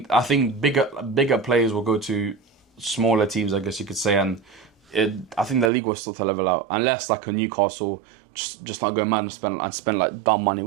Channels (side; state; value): left; drops out; at 5.7 s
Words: bigger players will go to smaller teams, I guess you could say, and I think the league will still to level out unless like a Newcastle just not go mad and spend like dumb money,